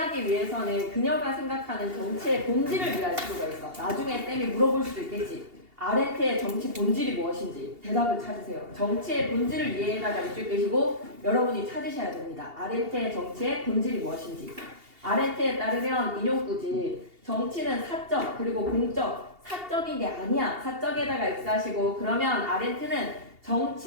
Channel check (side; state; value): left; late; 2.8 ms